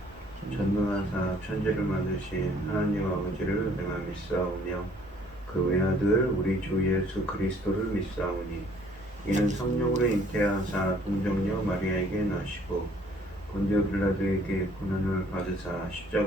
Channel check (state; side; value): normal; both; correlation 0.59